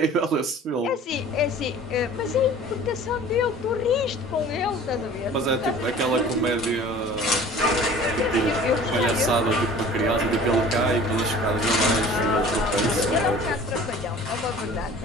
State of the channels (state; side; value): normal; both; correlation 0.45